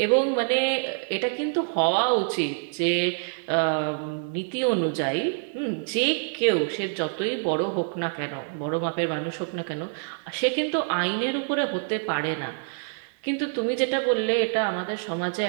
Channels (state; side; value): silent; left; digital silence